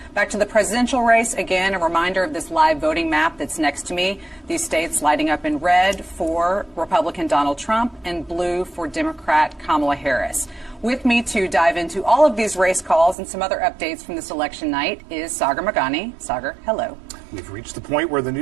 Back to the presidential race, again, a reminder of this live voting map that's next to me. These states lighting up in red for Republican Donald Trump and blue for Democrat Kamala Harris. With me to dive into all of these race calls and some other updates from this election night is Sagar Meghani. Sagar, hello. We've reached the point where the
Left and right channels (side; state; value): left; drops out; at 13.2 s